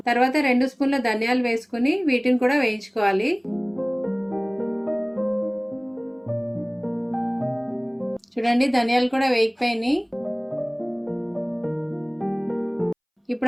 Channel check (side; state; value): both; identical; correlation 1.00